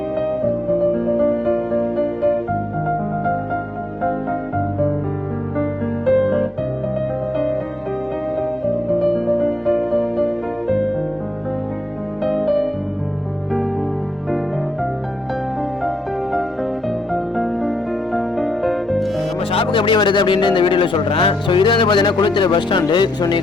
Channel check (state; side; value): normal; both; correlation 0.80